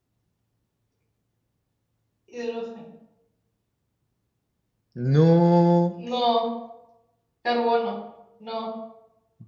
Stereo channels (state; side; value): identical; both; correlation 1.00